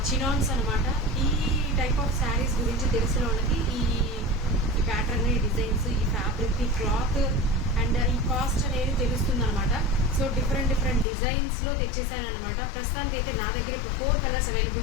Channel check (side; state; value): right; drops out; at 11.1 s